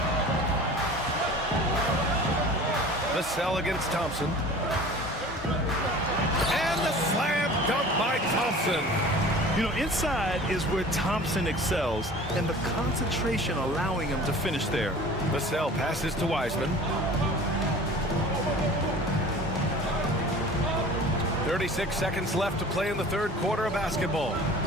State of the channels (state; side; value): normal; both; correlation 0.42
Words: Vassell against Thompson. And the slam dunk by Thompson. You know, inside is where Thompson excels, and the concentration allowing him to finish there. Vassell passes to Wiseman. 36 seconds left to play in the third quarter of basketball.